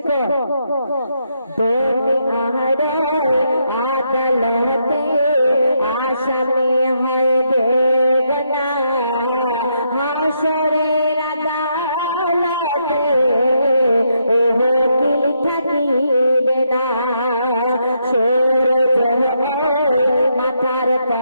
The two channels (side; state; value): both; inverted; correlation -0.78